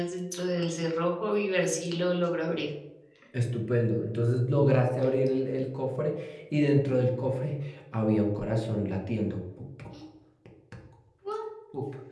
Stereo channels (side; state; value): both; identical; correlation 1.00